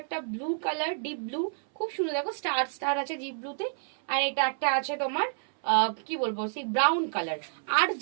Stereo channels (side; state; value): left; silent; 58 dB below the other